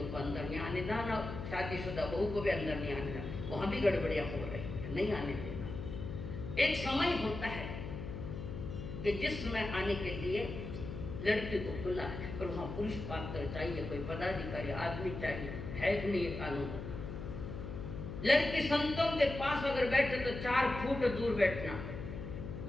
को अंदर नहीं आने देना, शादीशुदा बहू को भी अंदर नहीं आने देना, वहां भी गड़बड़ियां हो रही है, नहीं आने देना। एक समय होता है कि जिसमें आने के लिए लड़की को खुला है, पर वहाँ पुरुष पात्र चाहिए, कोई पदाधिकारी आदमी चाहिए, है कि नहीं ये कानून? लड़की संतों के पास अगर बैठे तो 4 फुट दूर बैठना,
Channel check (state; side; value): noise; left; hum, 7 dB below the sound